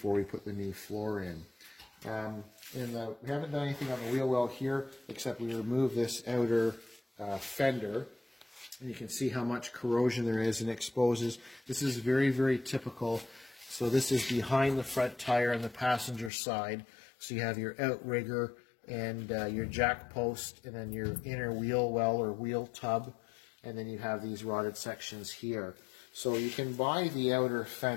we put the new floor in. We haven't done anything on the wheel well here, except we remove this outer fender, and you can see how much corrosion there is and exposes. This is very, very typical. So this is behind the front tire on the passenger side. So you have your outrigger and your jack post, and then your inner wheel well or wheel tub, and then you have these rotted sections here. So you can buy the outer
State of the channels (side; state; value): right; drops out; at 16.3 s